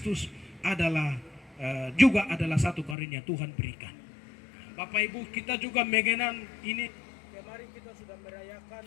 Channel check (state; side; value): drops out; right; at 3.0 s